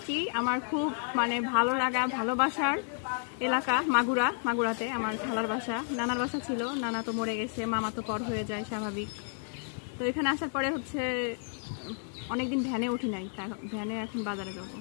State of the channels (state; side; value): silent; right; 57 dB below the other